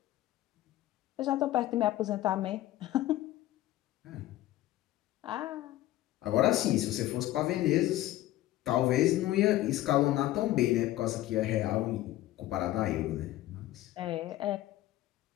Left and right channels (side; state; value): right; quieter; 15.2 dB